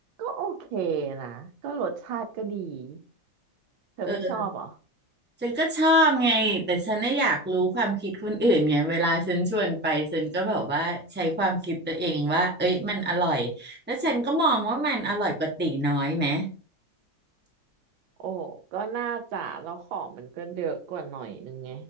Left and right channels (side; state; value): both; normal; correlation 0.27